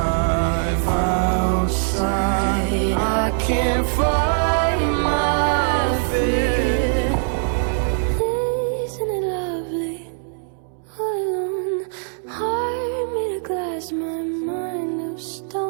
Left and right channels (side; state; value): left; silent; 64 dB below the other